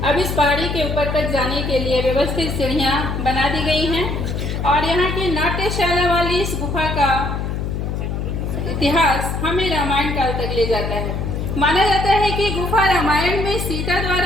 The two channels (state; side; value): noise; left; hum, 3 dB below the sound